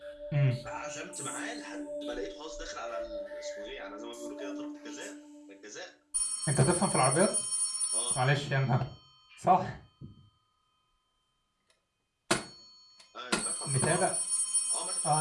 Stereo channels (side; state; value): both; identical; correlation 1.00